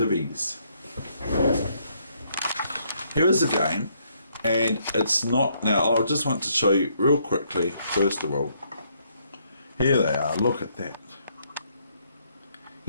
Here is a game, and it's not, now I just want to show you real quickly, first of all, here they are, look at that.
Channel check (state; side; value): inverted; both; correlation -0.71